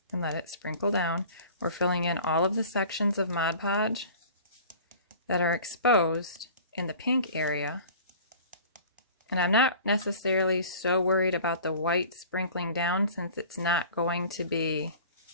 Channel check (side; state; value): both; inverted; correlation -0.43